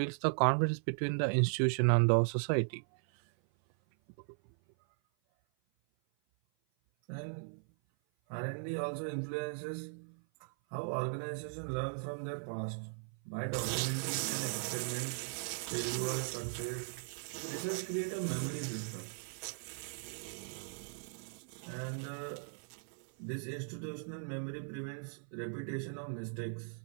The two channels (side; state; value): left; silent; 53 dB below the other